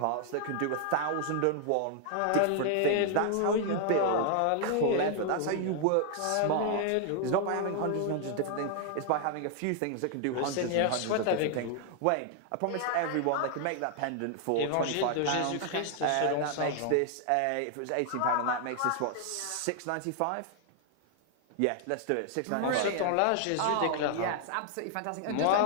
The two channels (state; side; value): different; both; correlation 0.00